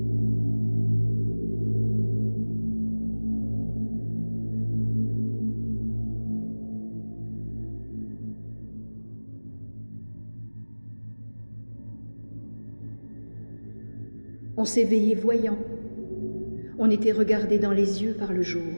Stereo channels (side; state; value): both; inverted; correlation -1.00